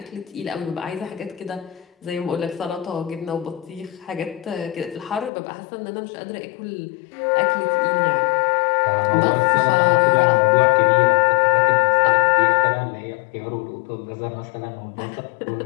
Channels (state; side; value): drops out; right; at 5.3 s